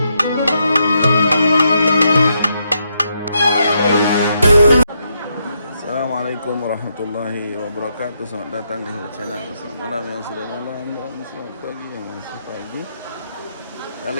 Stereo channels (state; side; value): inverted; both; correlation -0.79